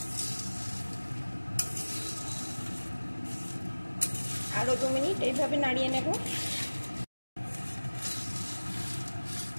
আরো 2 মিনিট এইভাবে নাড়িয়ে নেব।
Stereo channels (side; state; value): both; inverted; correlation -1.00